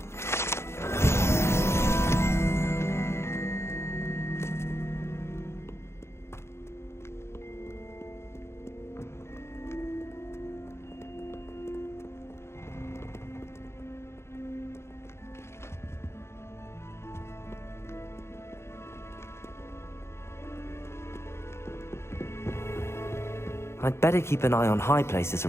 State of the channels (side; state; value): right; late; 0.13 ms